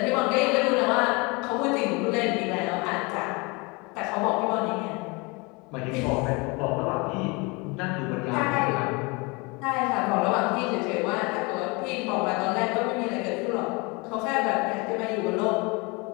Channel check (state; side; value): quieter; right; 27.7 dB